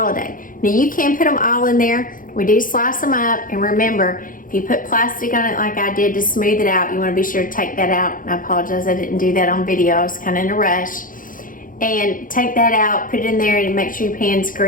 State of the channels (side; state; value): right; late; 0.40 ms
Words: Now you can put them all in there. We do slice them up, and remember, if you put plastic on it like I did to smooth it out, you want to be sure to take that out. And I apologize, I didn't do that on video. I was kind of in a rush. And take that out, put it in there, and make sure your pan's